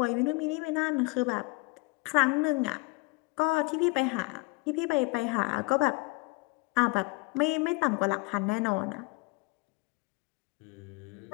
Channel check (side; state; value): right; quieter; 26.5 dB